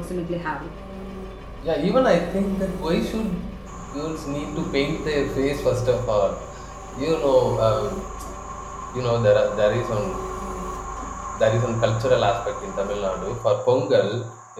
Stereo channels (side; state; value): both; identical; correlation 1.00